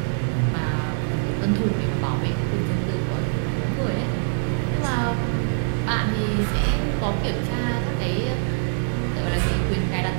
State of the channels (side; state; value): left; silent; digital silence